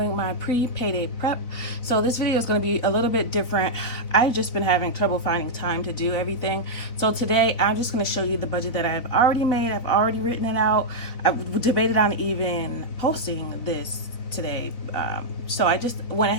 my pre-payday prep. So this video is going to be a little bit different. I've just been having trouble finding time to do everything. So today I'm just going to show you the budget that I've already made. I've already written it out. I've debated on even posting this today. So I just went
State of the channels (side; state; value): right; late; 4.0 ms